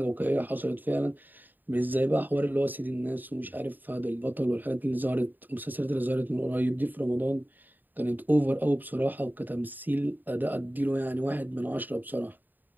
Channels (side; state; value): left; late; 0.089 ms